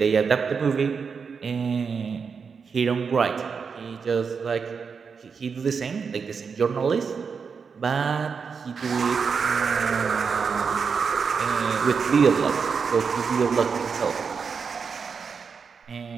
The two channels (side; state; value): left; quieter; 5.8 dB